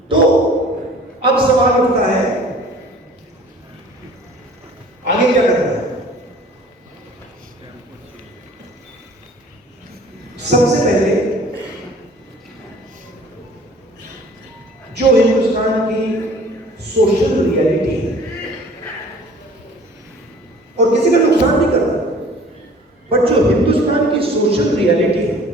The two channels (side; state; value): both; normal; correlation 0.50